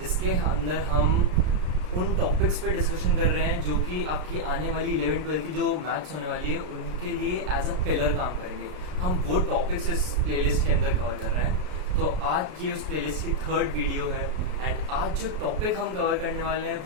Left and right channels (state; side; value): late; left; 33 ms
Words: अंदर हम उन टॉपिक्स पे डिस्कशन कर रहे हैं जो कि आपकी आने वाली 11-12 की जो मैथ्स होने वाली है उनके लिए एज अ पिलर काम करेंगे। हम वो टॉपिक्स इस प्लेलिस्ट के अंदर कवर कर रहे हैं। तो आज ये उस प्लेलिस्ट की थर्ड वीडियो है एंड आज जो टॉपिक हम कवर करने वाले हैं